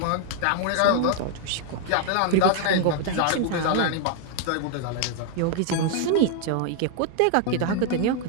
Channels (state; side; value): different; both; correlation 0.00